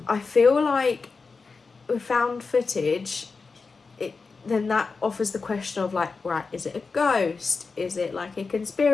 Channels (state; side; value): quieter; right; 4.5 dB